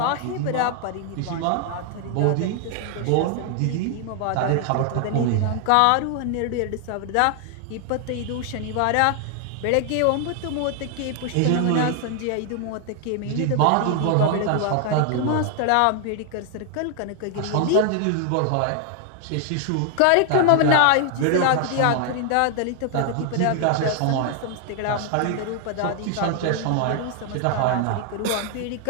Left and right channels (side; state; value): both; different; correlation 0.00